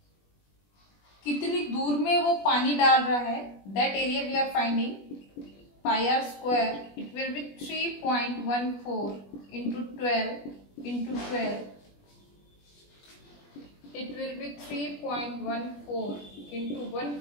कितनी दूर में वो पानी डाल रहा है, that area we are finding. Pi R square, it will be 3.14 into 12 into 12. It will be 3.14 into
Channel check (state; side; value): late; right; 21 ms